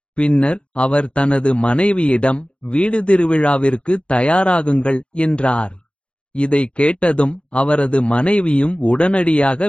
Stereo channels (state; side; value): late; right; 0.058 ms